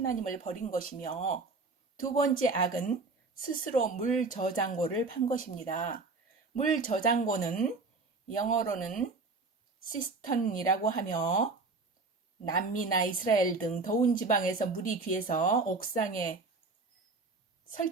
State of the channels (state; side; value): quieter; left; 3.8 dB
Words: 버린 것이며 두 번째 악은 스스로 물 저장고를 판 것입니다. 물 저장고는 영어로는 시스턴이라고 하며 남미나 이스라엘 등 더운 지방에서 물이 귀해서 옥상에